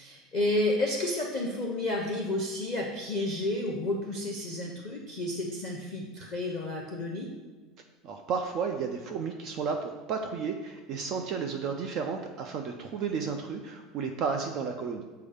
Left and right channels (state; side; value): normal; both; correlation 0.33